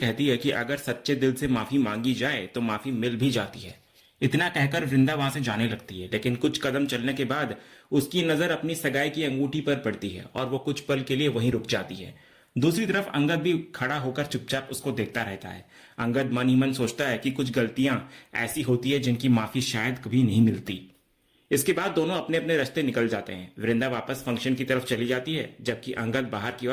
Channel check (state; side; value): identical; both; correlation 1.00